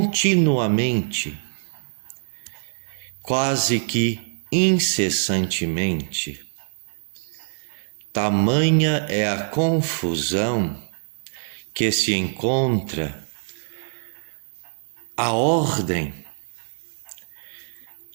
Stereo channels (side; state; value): left; silent; 62 dB below the other